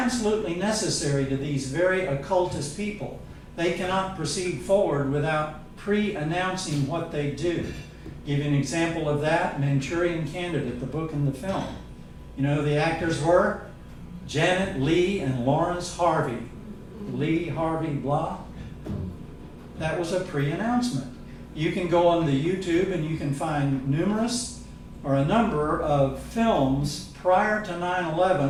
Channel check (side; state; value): both; identical; correlation 1.00